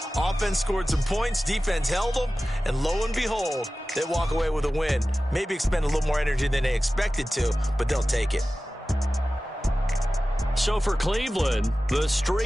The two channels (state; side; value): normal; both; correlation 0.96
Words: Offense scored some points. Defense held them. And lo and behold, they walk away with a win. Maybe expend a little more energy than they expected to, but they'll take it. So for Cleveland, the